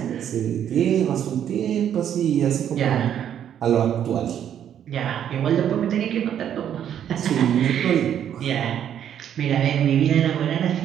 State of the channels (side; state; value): left; quieter; 9.7 dB